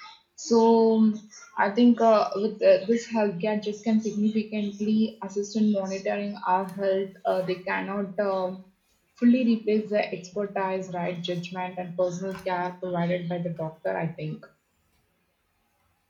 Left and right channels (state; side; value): identical; both; correlation 1.00